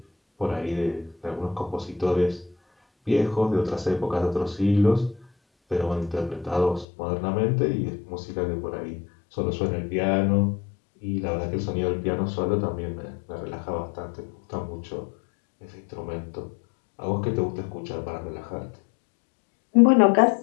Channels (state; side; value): drops out; right; at 6.9 s